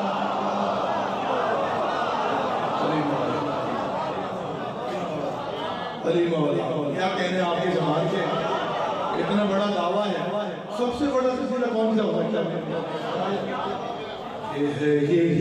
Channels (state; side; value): identical; both; correlation 1.00